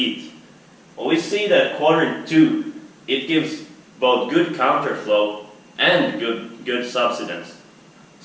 Well, we see that quadrant 2, it gives both good counterflow and good subsidence.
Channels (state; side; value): identical; both; correlation 1.00